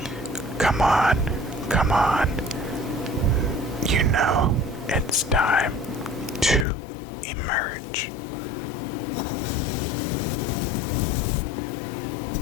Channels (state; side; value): drops out; right; at 6.7 s